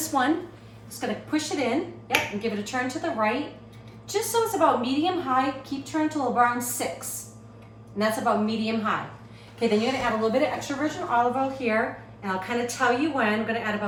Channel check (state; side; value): identical; both; correlation 1.00